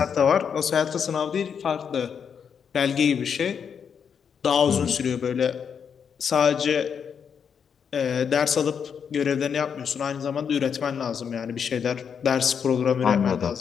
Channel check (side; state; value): right; quieter; 7.1 dB